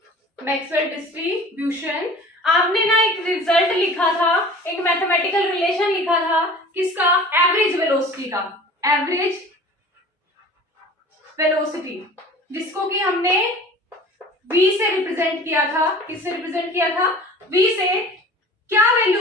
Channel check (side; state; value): both; normal; correlation 0.42